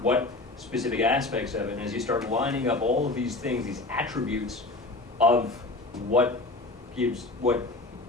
specific aspects of it? And as you start lining up all of these things, these attributes of what you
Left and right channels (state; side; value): quieter; right; 3.1 dB